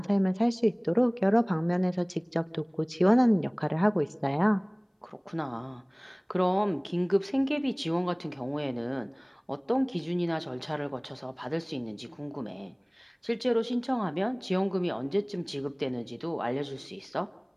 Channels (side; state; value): both; identical; correlation 1.00